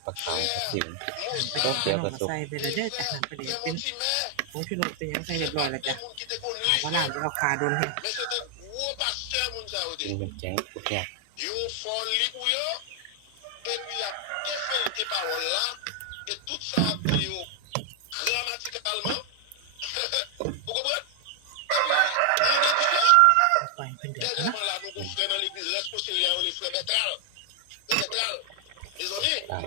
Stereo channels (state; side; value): different; both; correlation 0.00